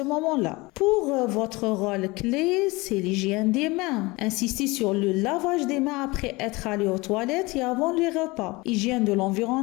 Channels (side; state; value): right; quieter; 23.3 dB